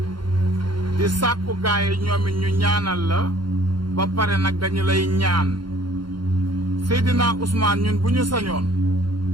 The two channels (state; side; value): late; left; 0.72 ms